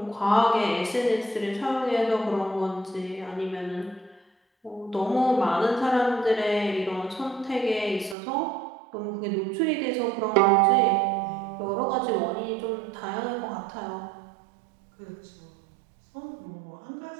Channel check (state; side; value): drops out; left; at 8.2 s